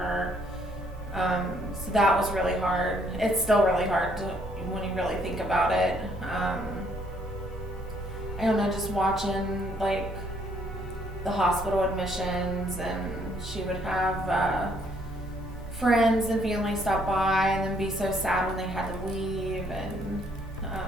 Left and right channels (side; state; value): both; normal; correlation 0.67